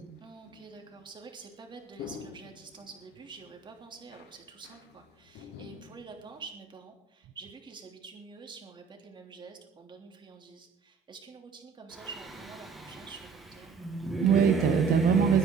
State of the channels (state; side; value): quieter; left; 5.8 dB